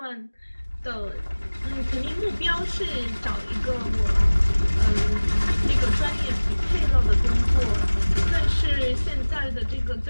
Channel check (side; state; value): both; inverted; correlation -1.00